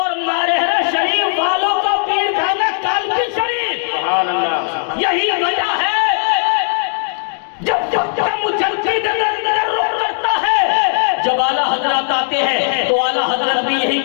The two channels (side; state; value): right; silent; digital silence